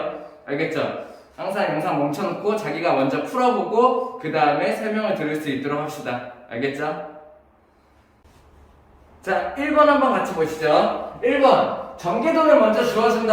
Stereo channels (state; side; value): identical; both; correlation 1.00